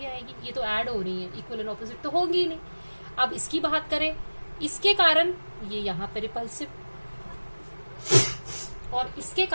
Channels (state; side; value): inverted; both; correlation -1.00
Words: आएगी, ये तो ऐड हो रही है, इक्वल एंड ऑपोजिट तो होगी ही नहीं। अब इसकी बात करें, इसके कारण ये यहाँ पे रिपल्सिव, और इसके